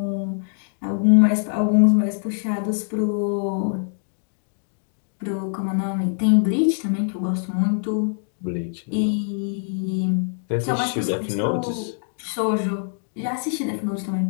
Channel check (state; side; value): silent; right; 63 dB below the other